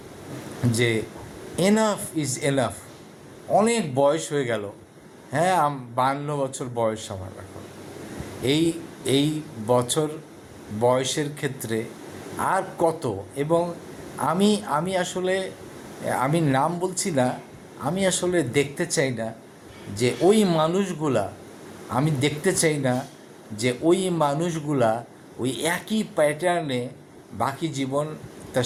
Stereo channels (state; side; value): identical; both; correlation 1.00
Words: যে এনাফ ইজ এনাফ। অনেক বয়স হয়ে গেল, হ্যাঁ 52 বছর বয়স আমার এখন। এই বছর বয়সের ক্ষেত্রে আর কত, এবং আমি আসলে আমি নাম বলছি না, আমি আসলে দেখতে চাই না যে ওই মানুষগুলা ওই একই প্যাটার্নে বাকি জীবন তা